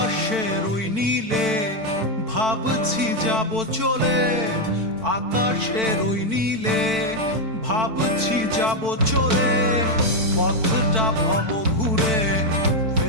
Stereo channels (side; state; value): left; late; 4.5 ms